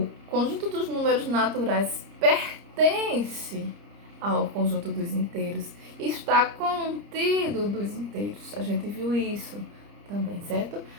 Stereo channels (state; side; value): late; left; 30 ms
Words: conjunto dos números naturais pertence ao conjunto dos inteiros. Está contido dos inteiros. A gente viu isso também, certo?